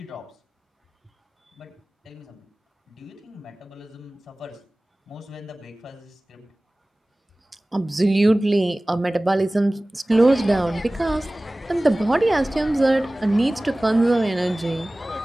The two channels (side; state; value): both; normal; correlation 0.98